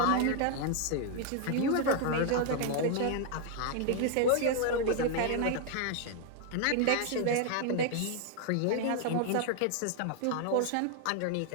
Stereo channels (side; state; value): both; different; correlation 0.00